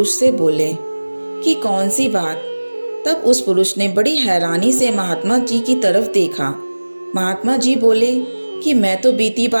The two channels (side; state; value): both; inverted; correlation -1.00